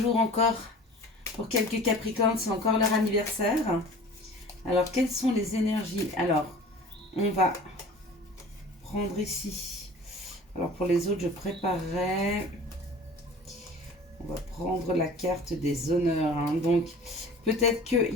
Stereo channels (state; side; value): normal; both; correlation 0.43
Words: encore pour quelques Capricornes, c'est encore leur anniversaire. Alors, quelles sont les énergies? Alors, on va prendre ici. Alors, pour les autres, je préparerai. On va prendre la carte des honneurs. Donc, peut-être qu'il